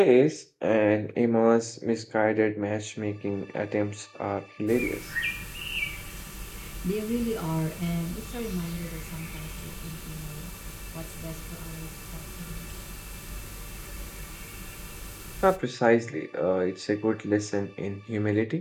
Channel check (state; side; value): identical; both; correlation 1.00